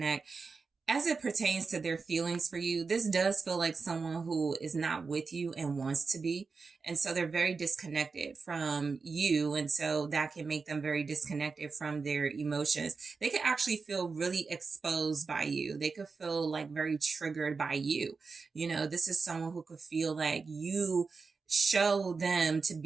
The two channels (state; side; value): quieter; left; 4.7 dB